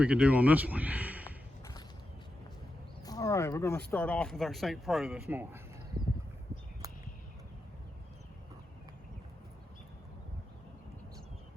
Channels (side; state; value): both; normal; correlation 0.88